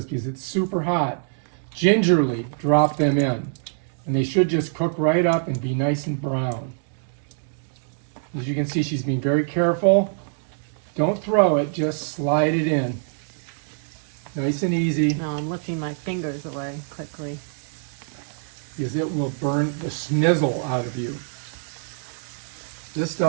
because it's super hot. Gingerly drop them in. And they should just cook right up and be nice and brown. As you can see, she's being very careful. Don't throw it, just slide it in. Nice and easy, No, I'm lifting my fingers away quickly. because it will burn the snizzle out of you. This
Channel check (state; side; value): silent; left; digital silence